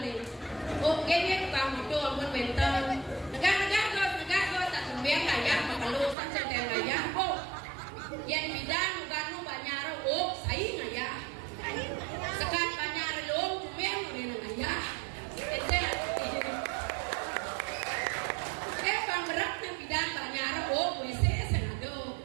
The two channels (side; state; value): left; drops out; at 6.2 s